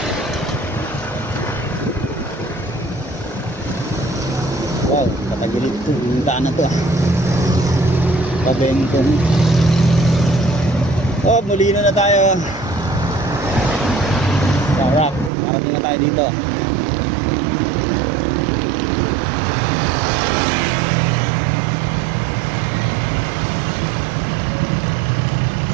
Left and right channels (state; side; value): drops out; left; at 15.3 s